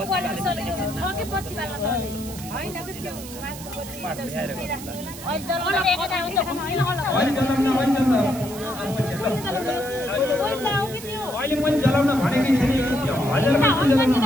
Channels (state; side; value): noise; right; hiss, 13 dB below the sound